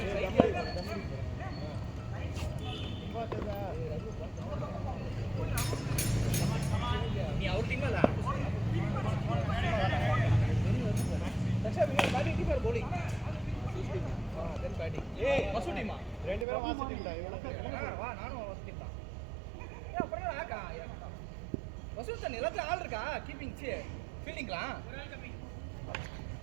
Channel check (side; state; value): left; drops out; at 16.4 s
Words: நீ அவர் டீம்ல இல்ல. தக்ஷா நீ பேட்டிங் கீப்பர் bowling தென் பேட்டிங் மசூ டீமா? ரெண்டு பேரும் வாசி டீம் தான் இவங்க வா நானும் மசூ டீம் தான். ஏன் அப்புறம் ஆக்கா மசூ தான் எல்லாத்துல ஆள் இருக்கா கீப்பிங் ஃபீல்டிங்லாம்